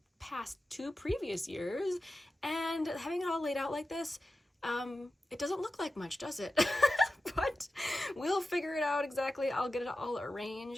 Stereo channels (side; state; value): both; normal; correlation 0.93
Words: past 2 previous years, and having it all laid out like this, it doesn't look like much, does it? But we'll figure it out exactly. I'll get it all